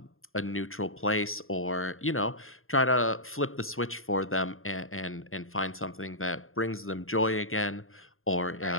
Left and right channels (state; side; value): late; right; 0.61 ms